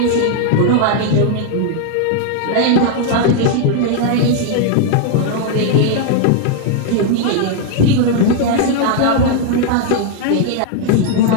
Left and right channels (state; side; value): different; both; correlation 0.00